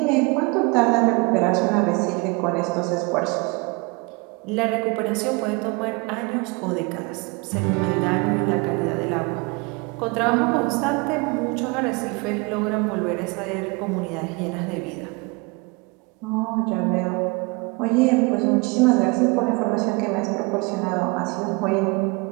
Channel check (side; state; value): left; quieter; 28.3 dB